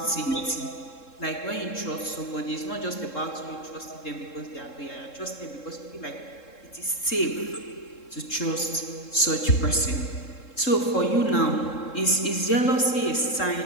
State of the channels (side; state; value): right; late; 3.7 ms